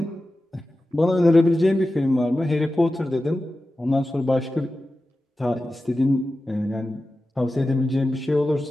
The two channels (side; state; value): both; normal; correlation 0.94